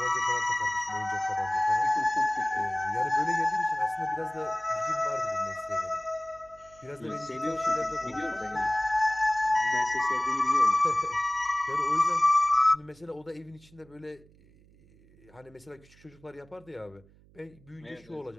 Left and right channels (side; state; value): right; noise; hum, 27 dB below the sound